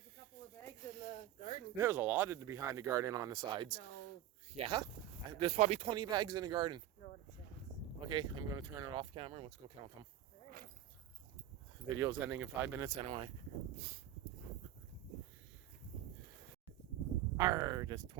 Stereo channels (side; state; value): left; quieter; 12.2 dB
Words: a couple of bags in the garden. There's a lot in behind the garden on the sides. No. Yeah? There's probably 20 bags in the garden. No, it's not. Okay, I'm going to turn it off camera and let's go count them. Right. Video's ending in 5 minutes anyway. Arr, there's